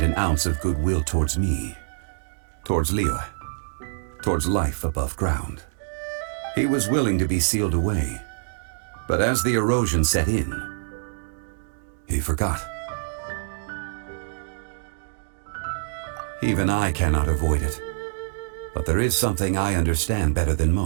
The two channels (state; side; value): silent; left; digital silence